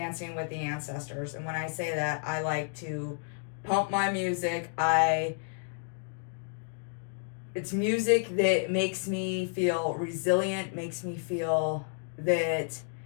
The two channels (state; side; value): silent; right; 57 dB below the other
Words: with the ancestors. And when I say that, I like to pump my music. It's music that makes me feel resilient, makes me feel that